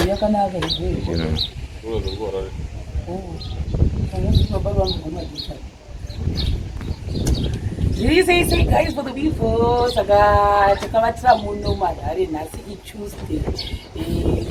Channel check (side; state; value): both; identical; correlation 1.00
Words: yakanaka izvozvo Say guys for the before saka takavatira muno marare nhasi iTuesday